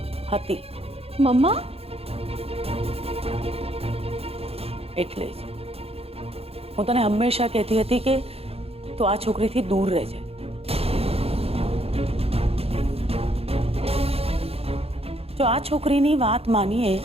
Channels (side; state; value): left; late; 0.29 ms